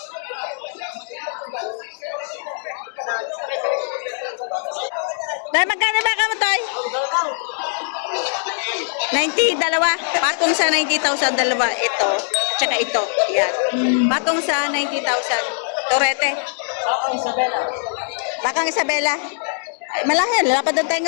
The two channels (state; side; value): silent; right; 59 dB below the other